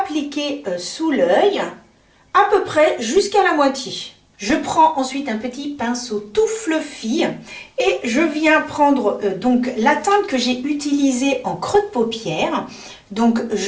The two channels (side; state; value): both; identical; correlation 1.00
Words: sous l'œil à peu près jusqu'à la moitié. Je prends ensuite un petit pinceau tout fluffy et je viens prendre donc la teinte que j'ai utilisée en creux de paupière. Donc